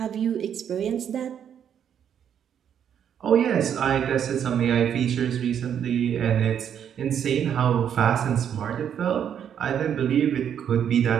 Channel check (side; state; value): left; quieter; 8.8 dB